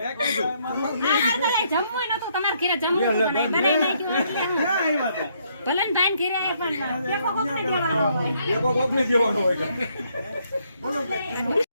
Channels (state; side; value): inverted; both; correlation -0.71